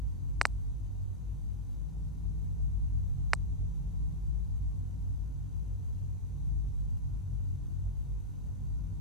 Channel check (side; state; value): both; normal; correlation -0.10